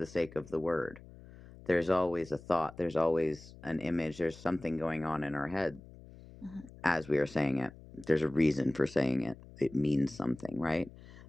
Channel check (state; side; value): noise; left; hum, 19 dB below the sound